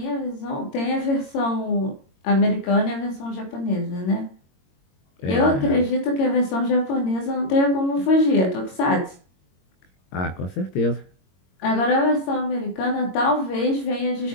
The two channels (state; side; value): late; right; 22 ms